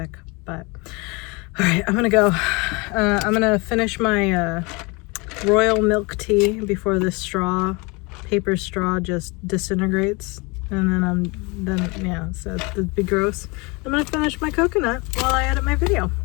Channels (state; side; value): quieter; right; 27.5 dB